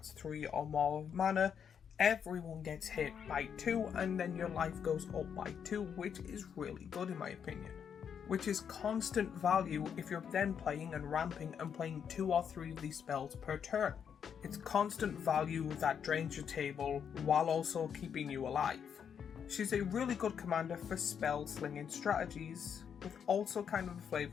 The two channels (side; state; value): right; quieter; 7.7 dB